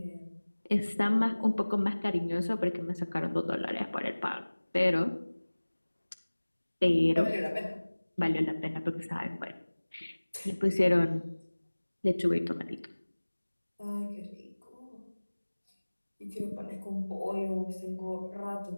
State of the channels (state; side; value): inverted; both; correlation -1.00